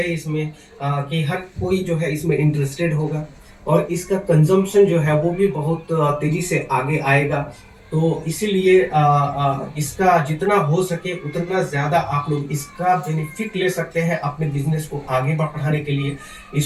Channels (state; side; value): identical; both; correlation 1.00